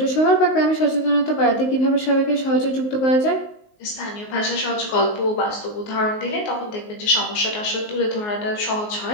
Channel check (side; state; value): right; late; 19 ms